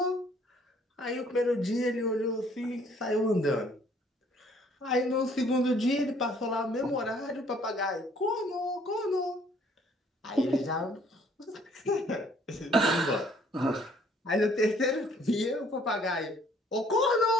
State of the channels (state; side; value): normal; both; correlation 0.61